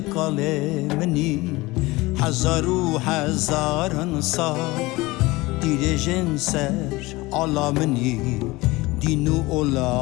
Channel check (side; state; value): right; quieter; 21.2 dB